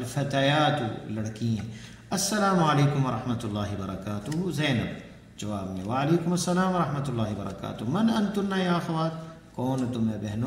لڑکیاں۔ السلام علیکم ورحمۃ اللہ وبرکاتہ، زینب، جواب میں وعلیکم السلام ورحمۃ اللہ وبرکاتہ، من انتن یا اخوات، کون تمہیں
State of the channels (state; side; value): identical; both; correlation 1.00